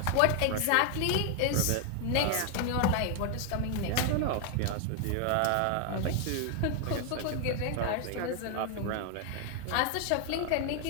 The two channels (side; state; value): both; different; correlation 0.00